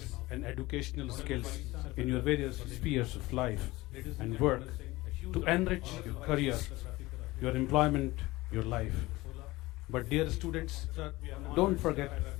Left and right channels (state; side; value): quieter; right; 19.8 dB